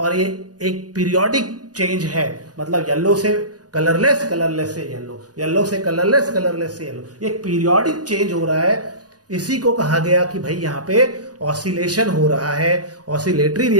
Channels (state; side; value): late; left; 0.68 ms